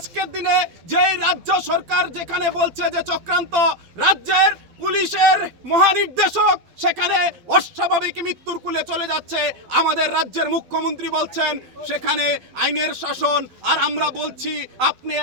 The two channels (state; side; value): late; left; 12 ms